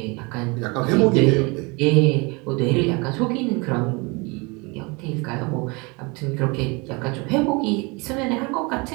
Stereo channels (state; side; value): quieter; left; 28.0 dB